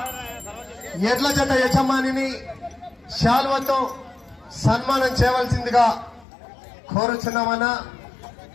ఎడ్ల జత యజమానిని శాల్వతో సన్మానం చేయవలసిందిగా కోరుచున్నామన్నా.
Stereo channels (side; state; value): right; drops out; at 6.2 s